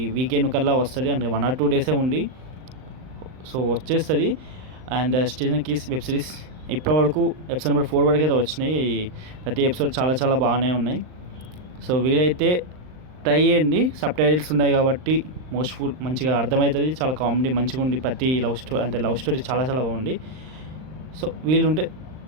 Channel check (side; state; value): left; late; 39 ms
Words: వీకెండ్ కల్లా వస్తుంది. అంటే 1 or 2 డేసే ఉంది. సో వచ్చేస్తుంది. And stranger kiss web series ఇప్పటి వరకు ఎపిసోడ్ నెంబర్ 4 వరకు అయితే వచ్చినాయి. ప్రతి ఎపిసోడ్ చాలా చాలా బాగానే ఉన్నాయి. సో వీలైతే ట్రై చేయండి. సబ్ టైటిల్స్ ఉన్నాయి కాబట్టి మోస్ట్ఫుల్ మంచిగా అర్థమవుతుంది. చాలా కామెడీ మంచిగా ఉంది. ప్రతి లవ్ స్టోరీ చాలా చాలా బాగుంది. సో వీలుంటే